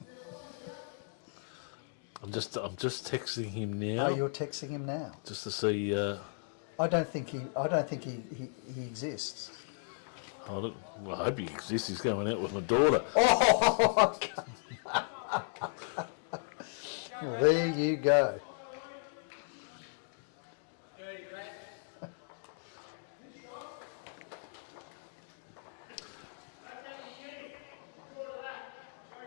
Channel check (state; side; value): silent; right; digital silence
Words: I'm just texting him now. Oh, you're texting him now. Just to see. I don't think he exists. I hope he exists. He's going out with my daughter. Oh, well, there you go.